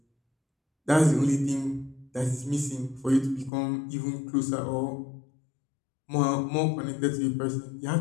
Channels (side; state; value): right; drops out; at 3.5 s